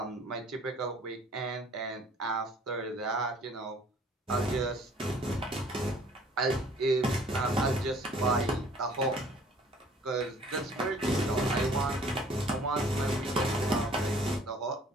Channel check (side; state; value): both; normal; correlation 0.55